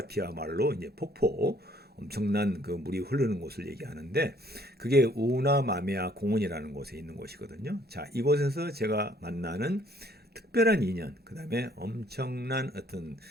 말로 이제 폭포, 엄청난 그 물이 흐르는 곳을 얘기하는데 그게 우나마메아 공원이라는 곳에 있는 곳이거든요. 자, 이곳에서 제가 만나는 특별한 인연, 그 다음에 엄청난 어떤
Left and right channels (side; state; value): both; normal; correlation 0.61